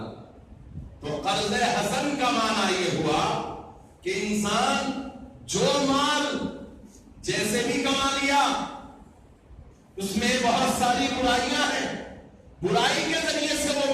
تو قرض حسن کا معنی یہ ہوا کہ انسان جو مال جیسے بھی کما لیا، اس میں بہت ساری برائیاں ہیں، برائی کے ذریعے سے وہ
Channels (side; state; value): both; identical; correlation 1.00